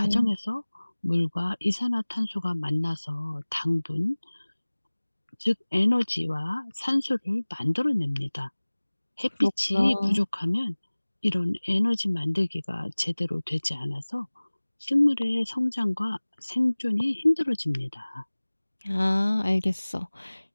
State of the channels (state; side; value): inverted; both; correlation -1.00